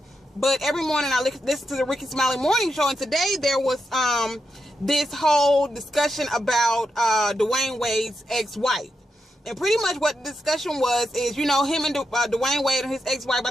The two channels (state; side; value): normal; both; correlation 0.85